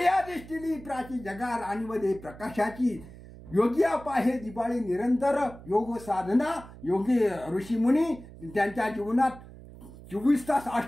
प्राची जगार आणि मध्ये प्रकाशाची. योगी पाहे दिवाळी निरंतर. योग साधना, योगी ऋषीमुनी त्यांच्या जीवनात 24 तास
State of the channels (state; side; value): noise; right; hum, 17 dB below the sound